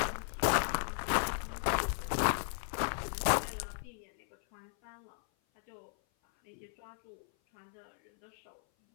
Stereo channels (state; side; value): silent; right; 54 dB below the other